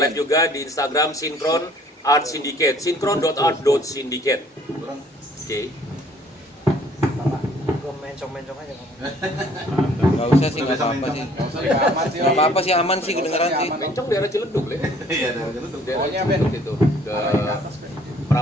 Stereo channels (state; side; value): normal; both; correlation 0.58